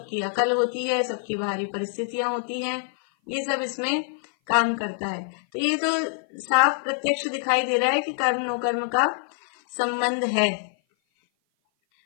अकल होती है, सबकी बाहरी परिस्थितियां होती हैं, ये सब इसमें काम करता है। तो ये तो साफ प्रत्यक्ष दिखाई दे रहा है कि कर्म नो कर्म का संबंध है।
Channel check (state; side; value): silent; right; 56 dB below the other